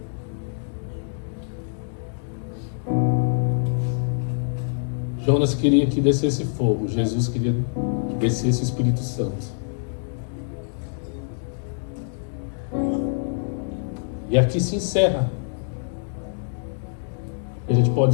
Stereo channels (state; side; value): silent; right; digital silence